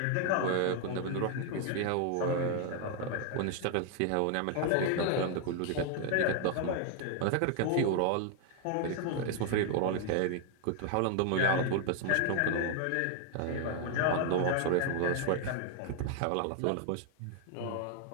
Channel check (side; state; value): both; different; correlation 0.00